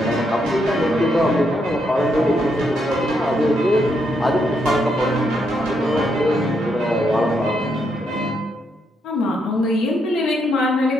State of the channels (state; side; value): normal; both; correlation 0.78